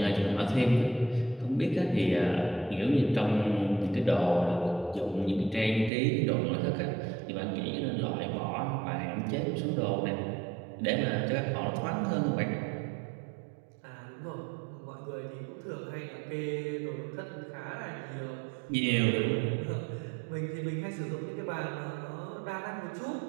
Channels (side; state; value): left; drops out; at 5.9 s